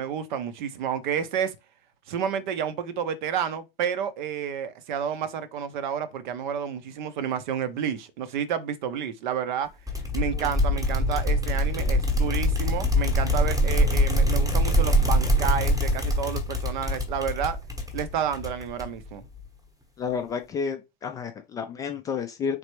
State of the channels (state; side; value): normal; both; correlation 0.32